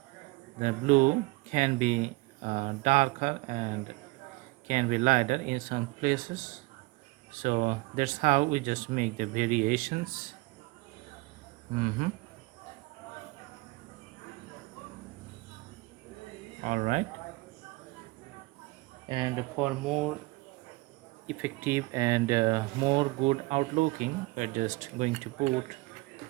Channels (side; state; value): left; quieter; 23.9 dB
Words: the blue can be darker and can be lighter in some places, so that's how we just make the variations. All right, and for more effective and more good outlooking, we're just going to put